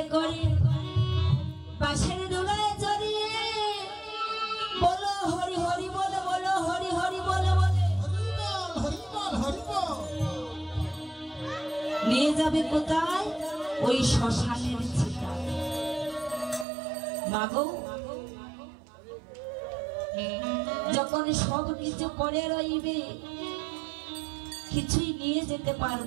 করে পাশের দোলায় চড়িয়ে বলো হরি হরি বলে, বলো হরি হরি বলে বলে নিয়ে যাবে কোথায়? ওই শ্মশানের চিতা। মাগো, যখন সব কিছু করে রইবে, কিছুই নিয়ে যেতে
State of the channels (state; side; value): drops out; left; at 16.7 s